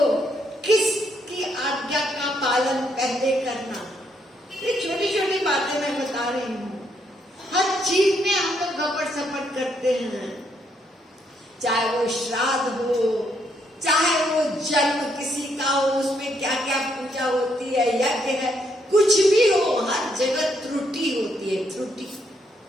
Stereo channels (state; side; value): normal; both; correlation 0.74